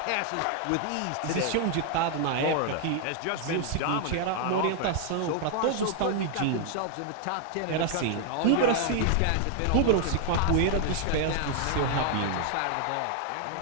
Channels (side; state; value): both; different; correlation 0.00